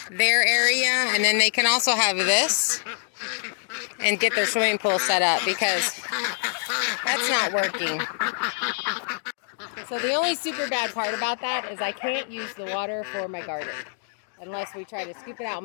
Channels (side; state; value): right; silent; digital silence